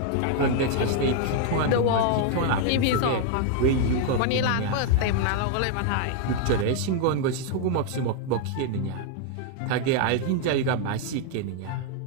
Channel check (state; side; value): different; both; correlation 0.00